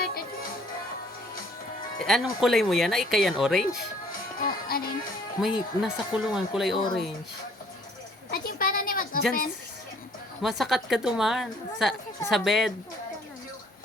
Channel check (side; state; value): both; normal; correlation 0.59